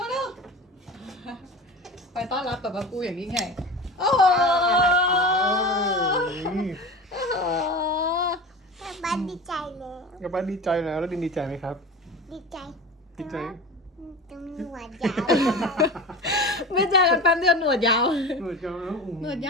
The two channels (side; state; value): both; normal; correlation 0.32